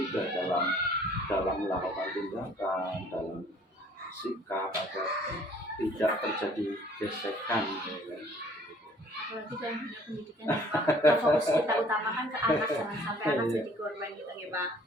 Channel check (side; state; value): both; normal; correlation 0.57